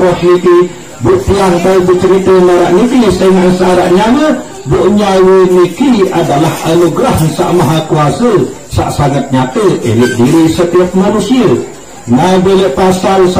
roh niki. Buktian tahu bercerita marak niki dengan syarat nyawa bu nyawa niki adalah anugerah Sang Maha Kuasa sangat nyata elit diri setiap manusia. Nah bila pasal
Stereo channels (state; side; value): identical; both; correlation 1.00